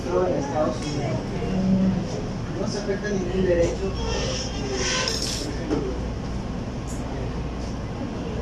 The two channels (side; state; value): both; identical; correlation 1.00